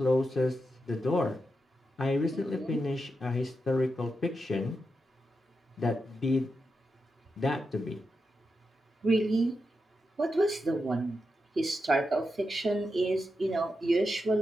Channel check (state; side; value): normal; both; correlation 0.87